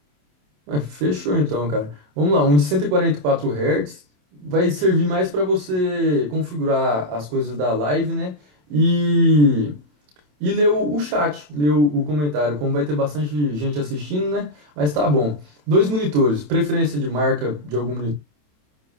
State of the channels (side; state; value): left; late; 27 ms